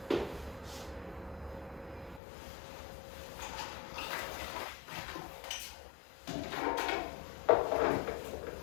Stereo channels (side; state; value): right; drops out; at 2.2 s